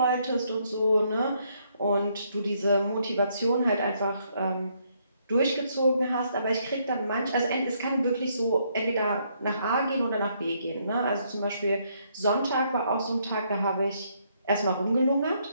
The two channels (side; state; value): both; inverted; correlation -0.72